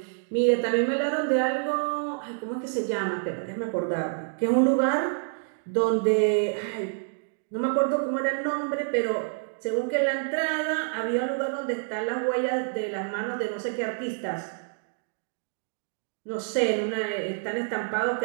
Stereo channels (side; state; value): left; silent; digital silence